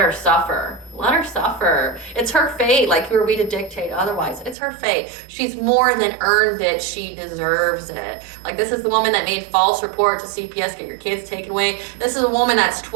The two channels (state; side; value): drops out; left; at 4.5 s